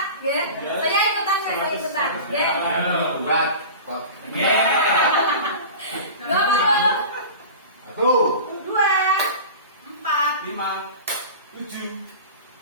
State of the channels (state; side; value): inverted; both; correlation -0.34